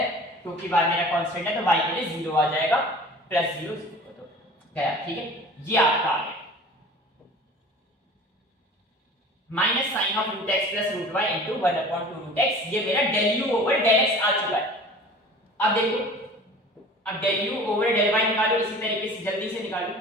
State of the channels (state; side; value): normal; both; correlation 0.42